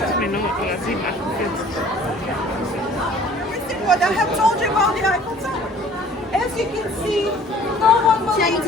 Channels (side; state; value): both; normal; correlation 0.52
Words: Everything what I have told you about the Eiffel Tower. As you can see, no one believed